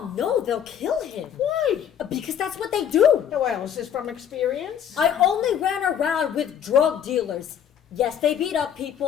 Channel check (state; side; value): quieter; right; 9.0 dB